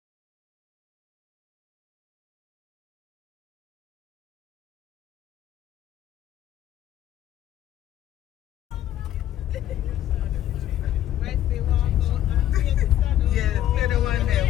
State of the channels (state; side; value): quieter; right; 12.1 dB